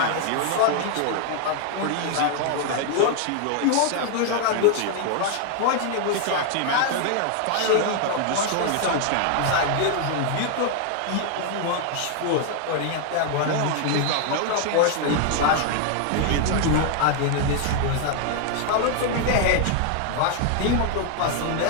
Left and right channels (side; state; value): both; different; correlation 0.00